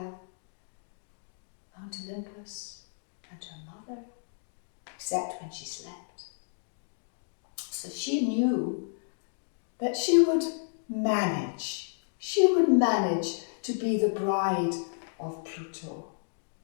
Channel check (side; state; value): right; silent; digital silence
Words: Mount Olympus and her mother, except when she slept. So she knew that she would manage. She would manage to be the bride of Pluto.